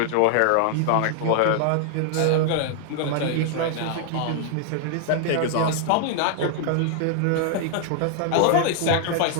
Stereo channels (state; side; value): different; both; correlation 0.00